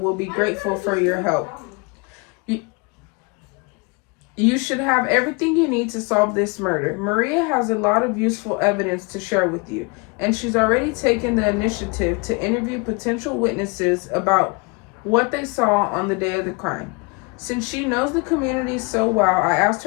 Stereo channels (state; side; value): quieter; right; 29.4 dB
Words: be grateful for your help. You should have everything you need to solve this murder. Maria has a lot of useful evidence to share with you, and she's already taken the initiative to interview potential witnesses about what they saw on the day of the crime. Since she knows the community so well, I asked